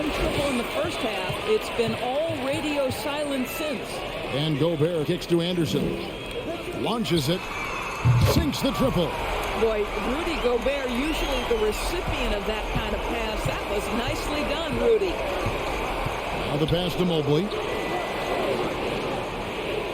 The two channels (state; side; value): identical; both; correlation 1.00